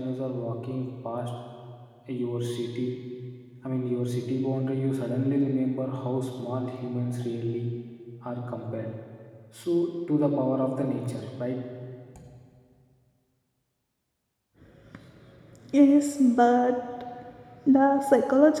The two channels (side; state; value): both; identical; correlation 1.00